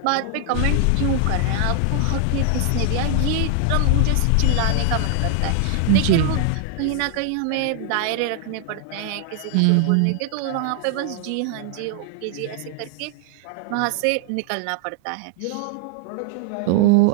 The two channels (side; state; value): both; different; correlation 0.00